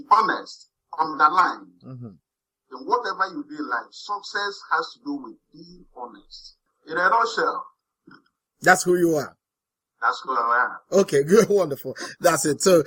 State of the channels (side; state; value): both; identical; correlation 1.00